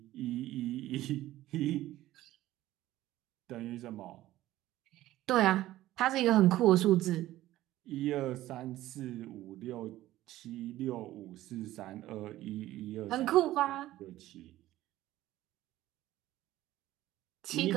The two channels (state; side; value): quieter; left; 15.2 dB